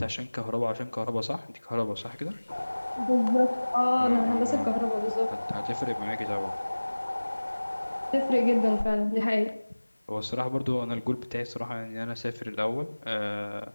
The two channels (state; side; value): inverted; both; correlation -1.00